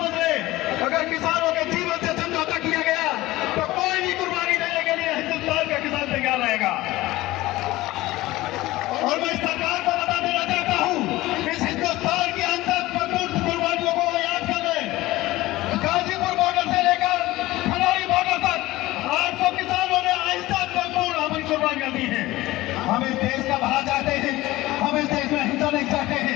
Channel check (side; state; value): right; quieter; 17.9 dB